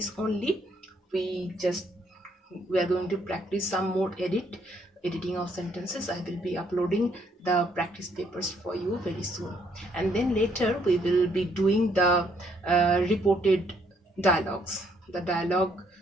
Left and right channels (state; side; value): normal; both; correlation 0.69